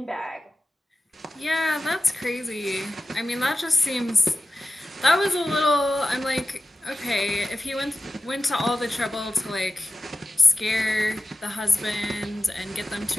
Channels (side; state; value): both; normal; correlation 0.94